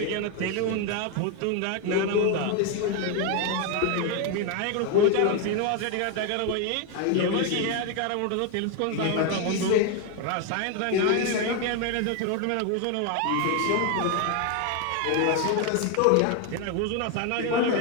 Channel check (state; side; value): different; both; correlation 0.01